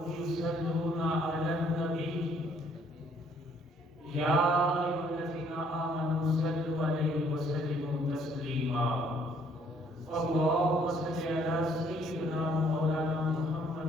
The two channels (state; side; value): normal; both; correlation 0.64